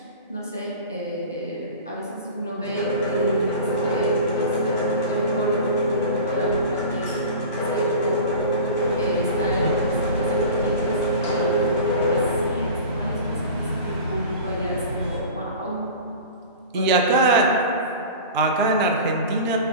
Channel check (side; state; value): both; inverted; correlation -0.36